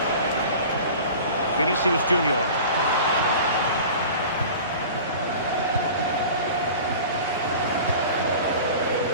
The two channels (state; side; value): inverted; both; correlation -0.39